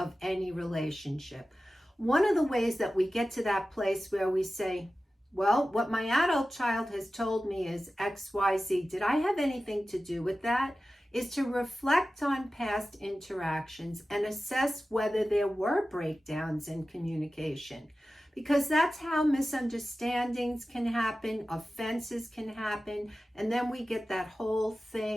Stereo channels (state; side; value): normal; both; correlation 0.95